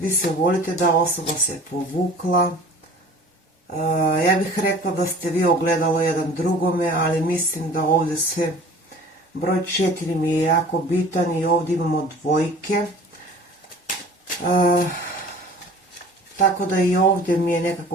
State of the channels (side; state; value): both; normal; correlation 0.45